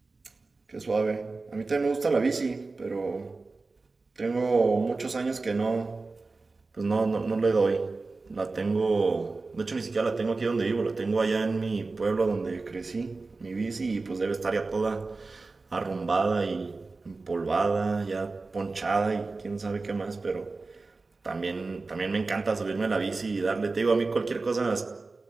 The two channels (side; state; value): left; quieter; 3.7 dB